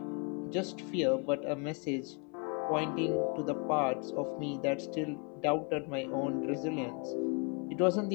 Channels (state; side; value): quieter; right; 35.1 dB